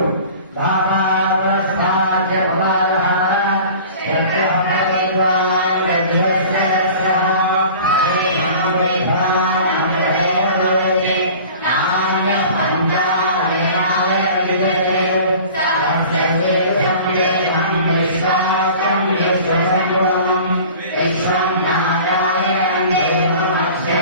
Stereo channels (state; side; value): inverted; both; correlation -0.43